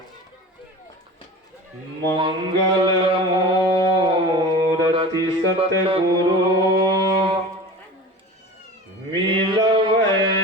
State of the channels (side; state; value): both; normal; correlation 0.35